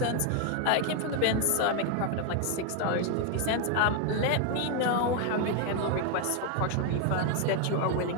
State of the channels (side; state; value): both; different; correlation 0.01